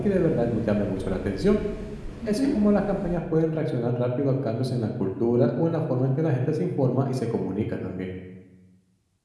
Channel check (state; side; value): identical; both; correlation 1.00